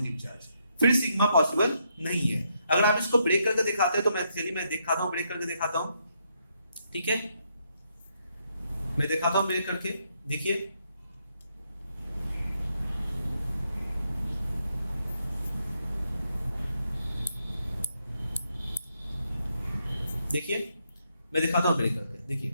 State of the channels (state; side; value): inverted; both; correlation -0.77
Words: चार्ज, फिर सिग्मा पॉसिबल नहीं है। अगर आप इसको ब्रेक करके दिखाते हैं तो मैं दिखाता हूं, ब्रेक करके दिखाता हूं, ठीक है, मैं दिखाता हूं ब्रेक करके, देखिए देखिए मैं दिखाता हूं ब्रेक करके,